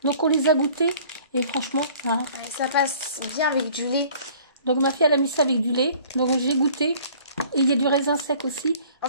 Donc on les a goûtées. Et franchement, hein. Ouais, ça passe bien avec du lait. Donc ma fille, elle a mis ça avec du lait. Donc j'ai goûté. Et il y a du raisin sec aussi. En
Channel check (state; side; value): inverted; both; correlation -0.52